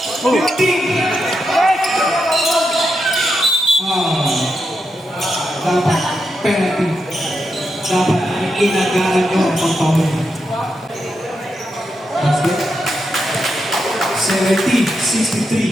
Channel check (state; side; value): normal; both; correlation 0.85